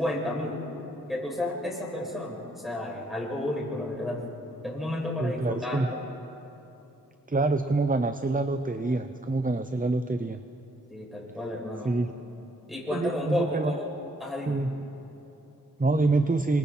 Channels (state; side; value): normal; both; correlation 0.70